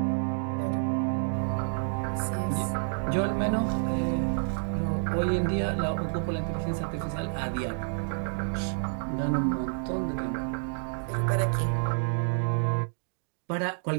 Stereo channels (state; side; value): silent; left; digital silence